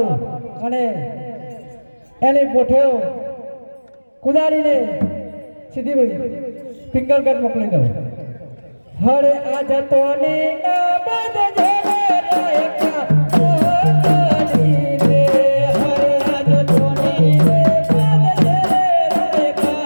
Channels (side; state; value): both; inverted; correlation -1.00